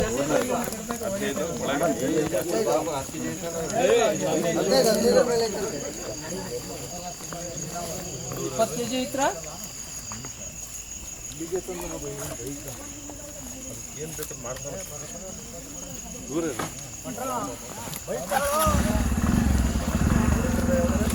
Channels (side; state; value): both; identical; correlation 1.00